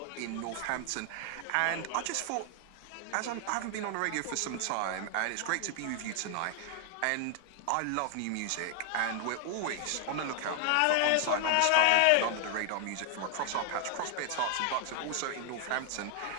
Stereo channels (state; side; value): different; both; correlation 0.00